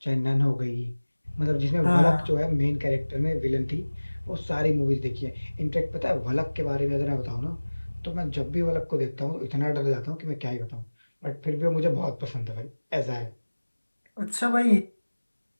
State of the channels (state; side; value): inverted; both; correlation -1.00